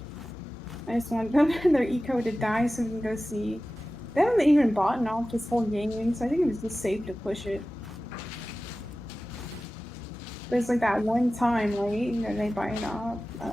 I just want them their eco to die so we can go see. They haven't even bought off this whole game, so I think it was just safe to push it. There's like that one time, right? You know, they buy it off. I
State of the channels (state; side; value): normal; both; correlation 0.96